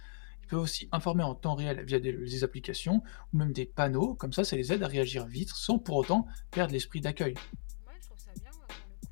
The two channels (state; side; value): silent; right; digital silence